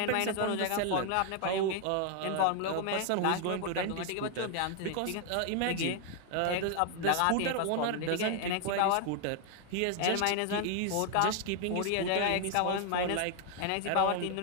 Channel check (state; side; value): different; both; correlation 0.00